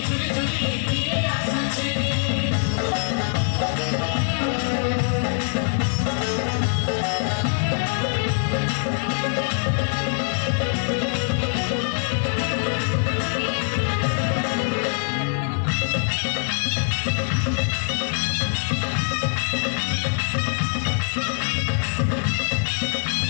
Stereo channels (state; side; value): silent; right; 56 dB below the other